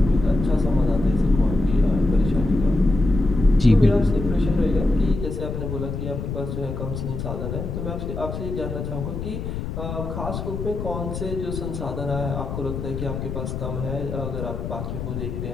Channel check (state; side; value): noise; left; rumble, 5 dB below the sound